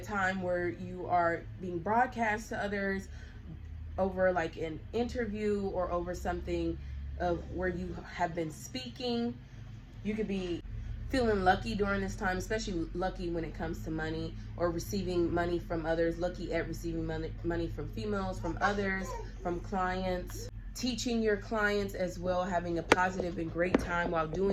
where you are being broadcast to others over like an interview, or over something of where you have been speaking. You could be feeling lucky during this time, especially lucky when it comes to money, or receiving money from others, lucky at receiving money from females, from others, from clients, teaching your clients as well, having a positive and great time while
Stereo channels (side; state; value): both; identical; correlation 1.00